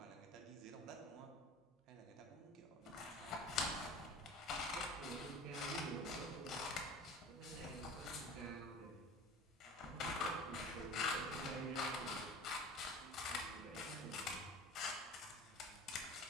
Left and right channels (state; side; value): normal; both; correlation 0.39